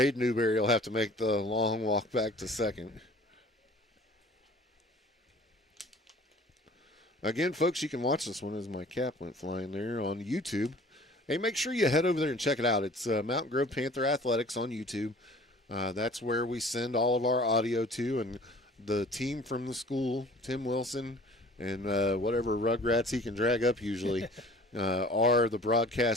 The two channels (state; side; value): normal; both; correlation 0.48